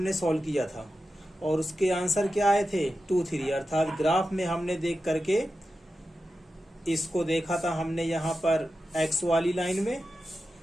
सॉल्व किया था और उसके आंसर क्या आए थे 2, 3, अर्थात ग्राफ में हमने देख करके इसको देखा था हमने यहाँ पर x वाली लाइन में,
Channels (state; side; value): normal; both; correlation 0.92